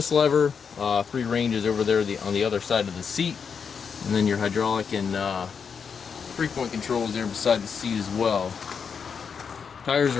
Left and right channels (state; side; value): quieter; right; 6.3 dB